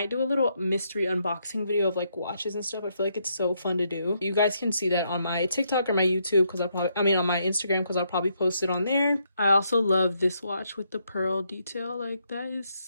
do a little mystery unboxing video of like watches and stuff. I feel like it's so fun to do. You guys can see that on my TikTok or my YouTube, because on my Instagram, because I'll probably post it on there. I also love this watch with the pearl detail. Like that is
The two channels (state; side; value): inverted; both; correlation -0.77